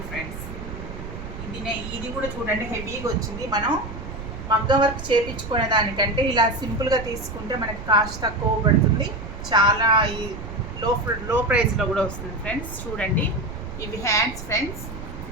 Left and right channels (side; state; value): right; noise; rumble, 10 dB below the sound